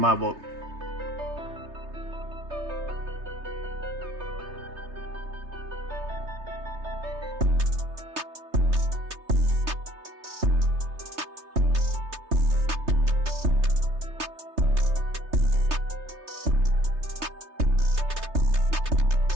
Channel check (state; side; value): late; left; 3.3 ms